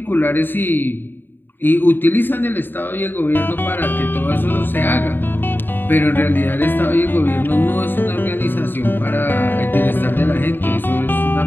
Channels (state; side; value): late; right; 0.095 ms